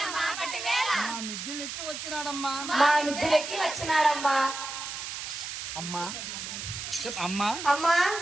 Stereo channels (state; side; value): noise; right; hiss, 7 dB below the sound